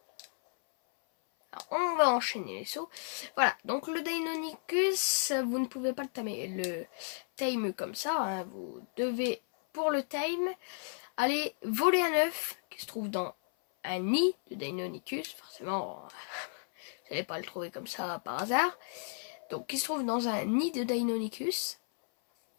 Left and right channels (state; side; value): silent; right; 56 dB below the other